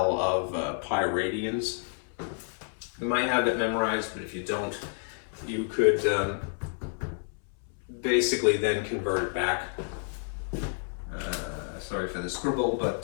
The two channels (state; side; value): silent; right; 58 dB below the other